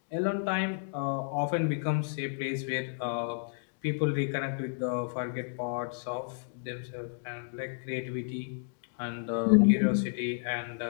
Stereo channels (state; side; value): silent; right; digital silence